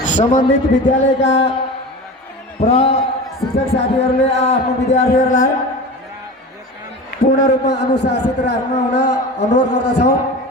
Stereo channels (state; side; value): normal; both; correlation 0.32